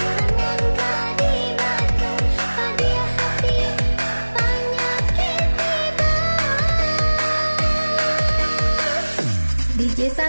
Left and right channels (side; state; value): both; inverted; correlation -1.00